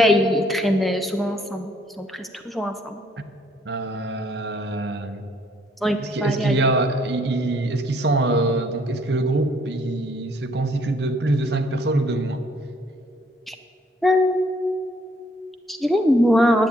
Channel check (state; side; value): normal; both; correlation 0.65